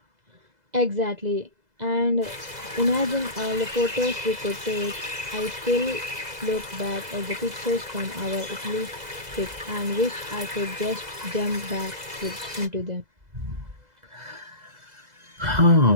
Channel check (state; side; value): late; left; 2.0 ms